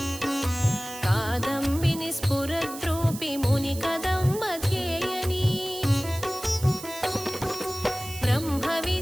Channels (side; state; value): right; noise; hiss, 12 dB below the sound